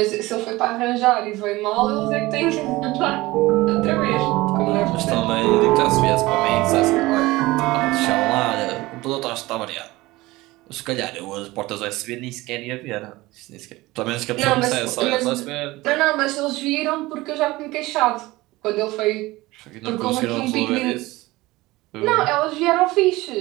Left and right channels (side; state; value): left; quieter; 19.7 dB